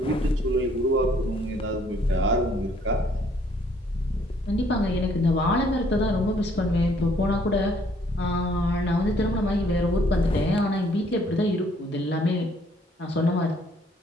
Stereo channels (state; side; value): normal; both; correlation 0.64